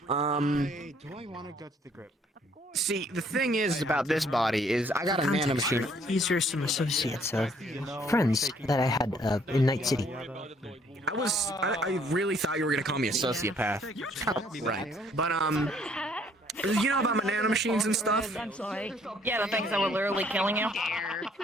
Do I want to go to the grip? See, the thing is about this body is I got a nanomachine. These are some associates, friends that I had in Night City. I really thought you were gonna call me a sociopath. Right. But you know about my nanomachines and stuff? I'm sorry. Yeah, the things that were literally killing you.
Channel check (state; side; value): normal; both; correlation 0.63